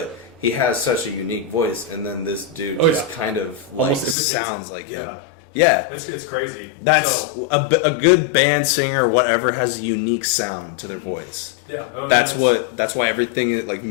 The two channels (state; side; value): drops out; right; at 4.2 s